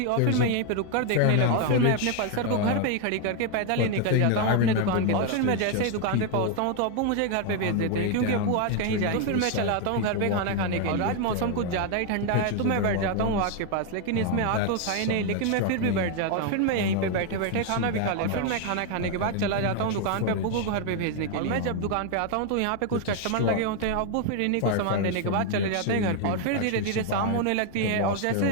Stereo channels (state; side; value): different; both; correlation 0.00